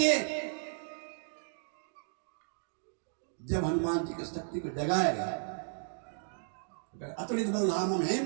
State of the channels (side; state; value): left; silent; digital silence